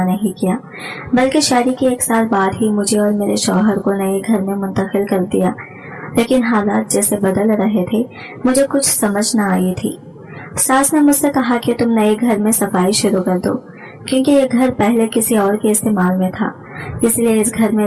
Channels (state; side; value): identical; both; correlation 1.00